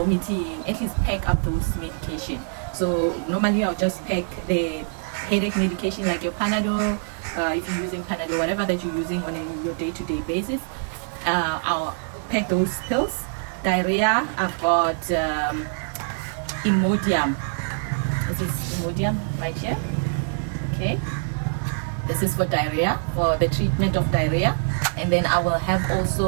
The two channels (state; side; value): silent; left; digital silence